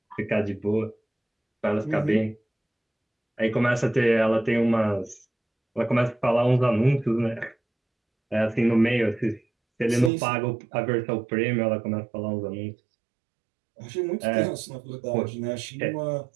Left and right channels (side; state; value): left; drops out; at 10.1 s